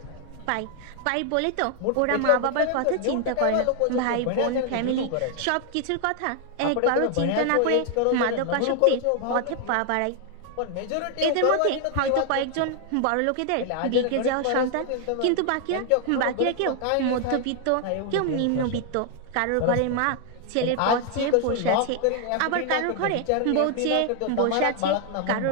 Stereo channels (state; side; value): different; both; correlation 0.00